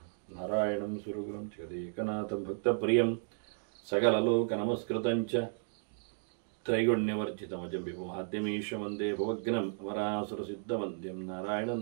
नारायणं सुरगुरुं जगदेकनाथं भक्तप्रियं सकललोकनमस्कृतं च त्रैगुण्यवर्जितमजं विभुमाद्यमीश वन्दे भवग्नम् अमरासुरसिद्धवन्द्यं नारायणं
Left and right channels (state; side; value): silent; left; digital silence